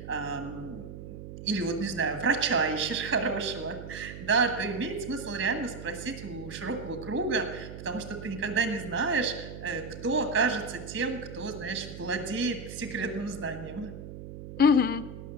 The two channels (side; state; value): right; noise; hum, 11 dB below the sound